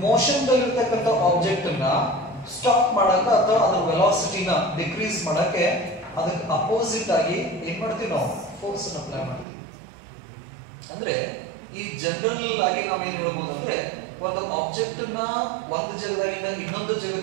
ಮೋಷನ್ ದಲ್ಲಿರ್ತಕ್ಕಂಥ ಆಬ್ಜೆಕ್ಟ್ ಅನ್ನ ಸ್ಟಾಪ್ ಮಾಡಕ ಅಥವಾ ಅದರ ವೆಲಾಸಿಟಿನ ಡಿಕ್ರೀಸ್ ಮಾಡಕ್ಕೆ ಅದಕ್ಕೆ ಅಪೋಸಿಟ್ ಆಗಿ ಏನ್ ಮಾಡ್ತೀವಿ ನಾವು? ಫೋರ್ಸ್ ಅನ್ನ ಅಪ್ಲೈ ಮಾಡ್ತೀವಿ. ಅಂದ್ರೆ ಈ ಜನರಲ್ ಆಗಿ ನಾವೇನ್ ಹೇಳ್ಬೋದು ಅಂದ್ರೆ, ಒಂದು ಆಬ್ಜೆಕ್ಟ್ ನ ಒಂದು ಜಾಗದಿಂದ ಇನ್ನೊಂದು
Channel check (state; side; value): drops out; left; at 9.5 s